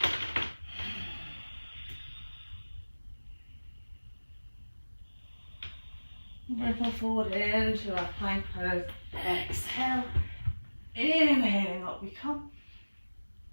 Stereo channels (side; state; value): both; inverted; correlation -1.00